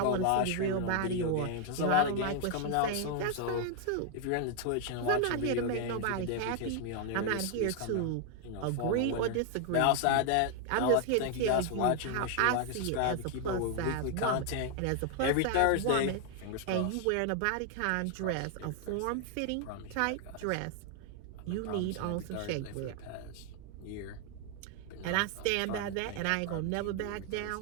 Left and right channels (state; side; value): different; both; correlation 0.00